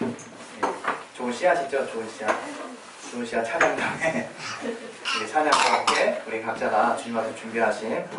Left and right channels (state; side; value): identical; both; correlation 1.00